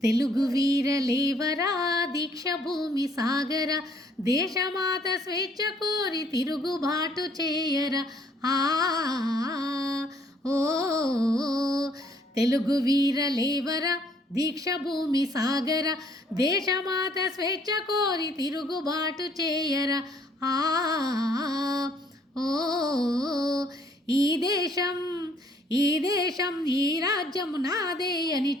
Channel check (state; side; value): normal; both; correlation 0.63